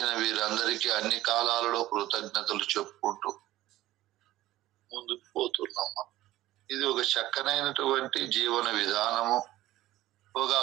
వీరందరికీ అన్ని కాలాలలో కృతజ్ఞతలు చెప్పుకుంటూ ముందుకు పోతున్నాం. ఇది ఒక చక్కనైనటువంటి జీవన విధానము, ఒక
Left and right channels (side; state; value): left; quieter; 15.7 dB